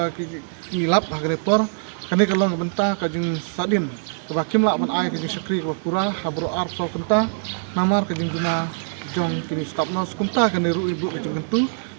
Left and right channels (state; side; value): silent; left; digital silence